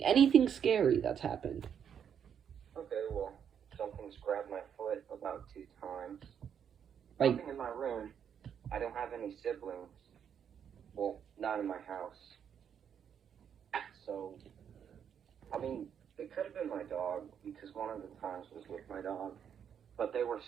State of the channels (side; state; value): left; quieter; 8.2 dB